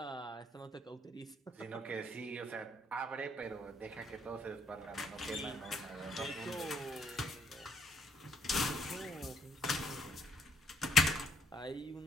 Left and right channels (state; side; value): normal; both; correlation 0.67